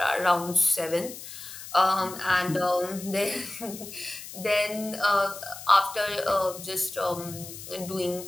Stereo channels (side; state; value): left; noise; hiss, 12 dB below the sound